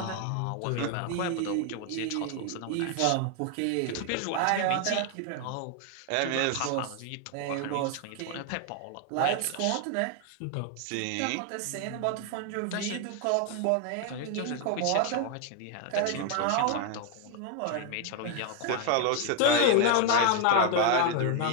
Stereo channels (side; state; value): both; different; correlation 0.00